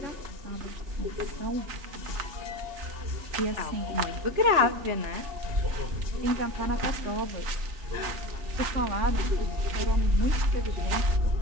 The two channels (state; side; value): late; left; 3.4 ms